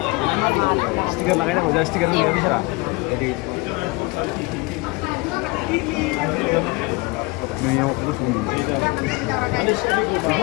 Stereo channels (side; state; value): right; quieter; 25.1 dB